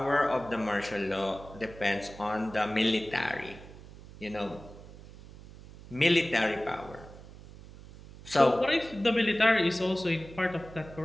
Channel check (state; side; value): noise; right; hum, 18 dB below the sound